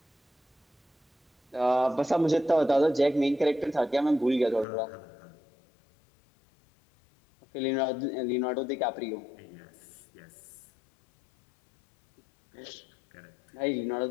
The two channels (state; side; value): drops out; right; at 4.7 s